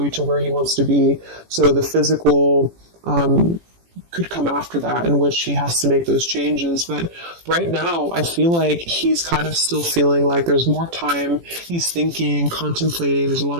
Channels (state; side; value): late; left; 18 ms